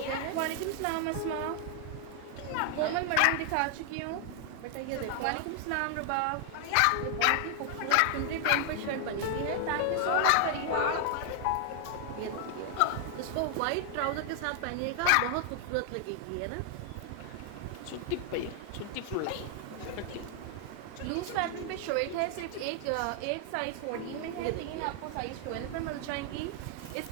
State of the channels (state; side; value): different; both; correlation 0.00